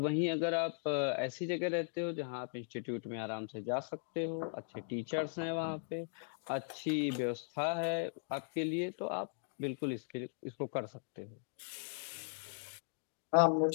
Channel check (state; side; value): silent; right; digital silence